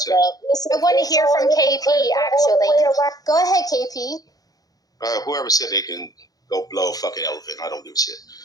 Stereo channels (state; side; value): late; right; 0.18 ms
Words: I want to hear from KP, actually. Go ahead, KP. Whoever said they can go blow a fucking elephant, I don't give a shit.